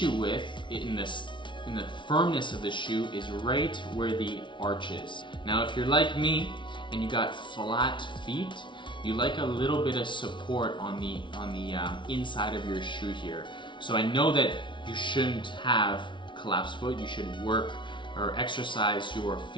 with in the firmness of the shoe is right where the arch is. Now, if you're like me, and you got flat feet, you like a little bit of support on the inside of your shoe here. So I know that you shouldn't have collapsed foot. You should work or exercise your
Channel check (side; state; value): right; late; 0.24 ms